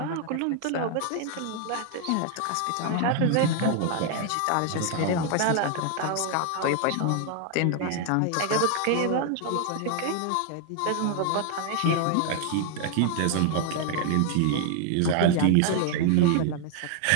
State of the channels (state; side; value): different; both; correlation 0.00